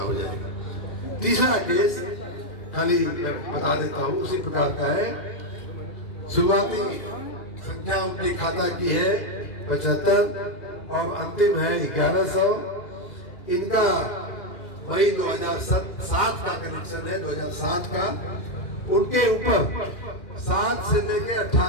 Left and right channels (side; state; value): right; late; 2.4 ms